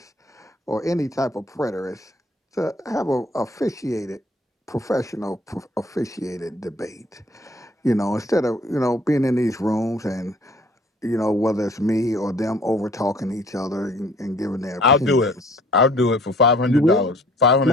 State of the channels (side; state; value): both; normal; correlation 0.56